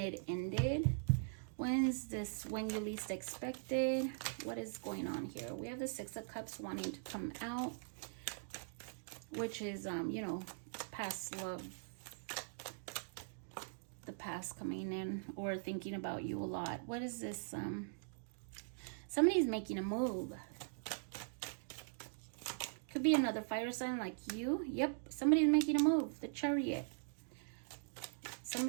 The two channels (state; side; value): silent; left; digital silence